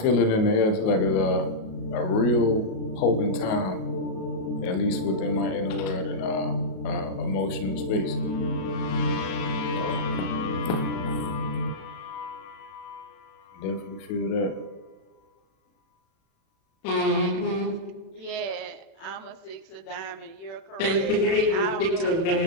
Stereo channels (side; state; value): right; late; 37 ms